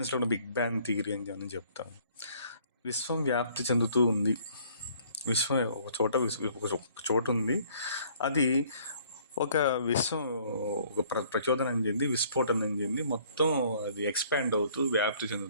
ఉన్న బిగ్ బ్యాంగ్ థియరీ అని మనం చెప్తాం. విశ్వం వ్యాప్తి చెందుతూ ఉంది, విశ్వం ఒక చోట ఉంది, అది ఒక విశ్వం ఒక ప్రచోదనం చెంది, విస్ఫోటనం చెంది, మొత్తం అది ఎక్స్పాండ్ అవుతూ వ్యాప్తి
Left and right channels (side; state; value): both; inverted; correlation -0.59